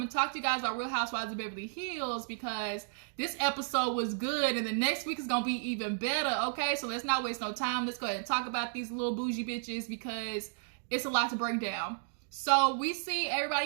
and talk to you guys about Real Housewives of Beverly Hills, because this episode was good, and the next week is gonna be even better. Okay, so let's not waste no time. Let's go ahead and talk about these little bougie bitches, because it's a lot to break down. So we see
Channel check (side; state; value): left; silent; digital silence